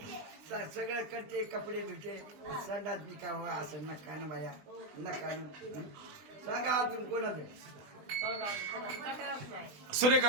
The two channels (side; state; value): left; late; 20 ms